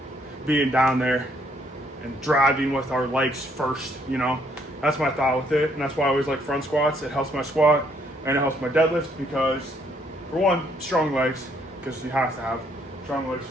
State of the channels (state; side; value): normal; both; correlation 0.68